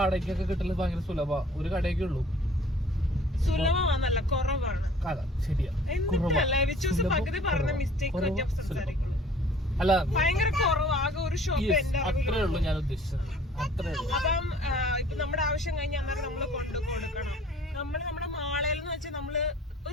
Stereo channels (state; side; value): normal; both; correlation 0.52